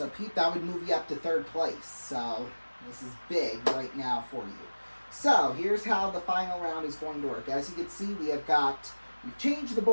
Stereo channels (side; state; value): both; inverted; correlation -1.00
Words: Pete, that would move you up to 3rd place. So this is big right now for you. So here's how the final round is going to work. As you can see, we've changed the